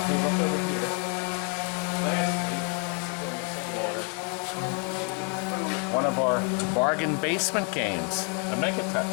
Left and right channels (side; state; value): right; quieter; 33.7 dB